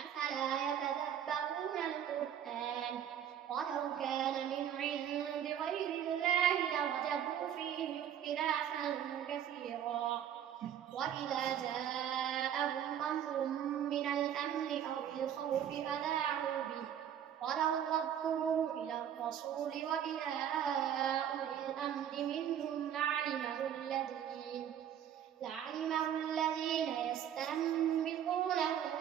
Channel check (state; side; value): quieter; left; 9.7 dB